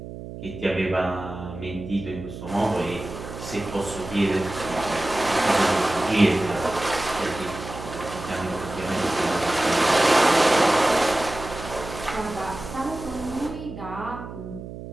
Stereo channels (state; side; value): noise; right; hum, 11 dB below the sound